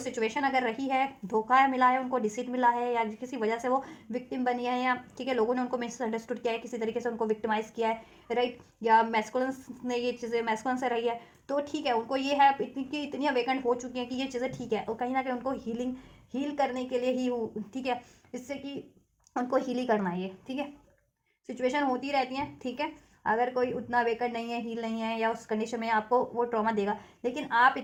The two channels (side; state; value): both; identical; correlation 1.00